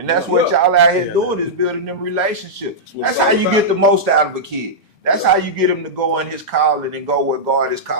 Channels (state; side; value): normal; both; correlation -0.10